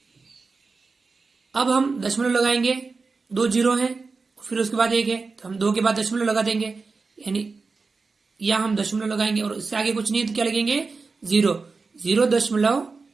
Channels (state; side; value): quieter; left; 4.3 dB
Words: अब हम दशमलव लगाएंगे, 2 0 हैं फिर उसके बाद 1 है तो हम 2 के बाद दशमलव लगा देंगे यानी या हम दशमलव लगाएंगे और इससे आगे कुछ नहीं है तो क्या लगेंगे?